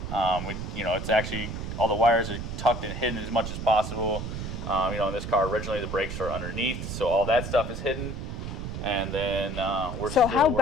It's actually all the wires are tucked and hidden as much as possible. In this car originally the brakes are underneath, so all that stuff is hidden. And then we're So how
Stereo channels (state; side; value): noise; right; rumble, 6 dB below the sound